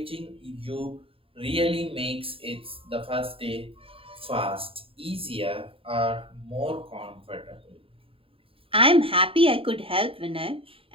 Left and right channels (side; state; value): left; late; 0.27 ms